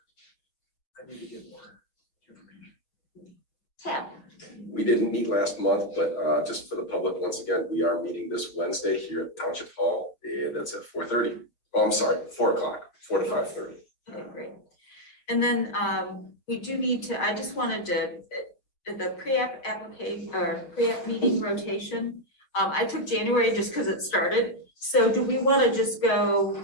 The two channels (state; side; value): late; right; 6.7 ms